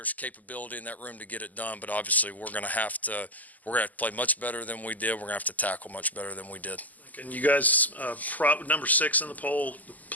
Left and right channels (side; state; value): right; late; 0.080 ms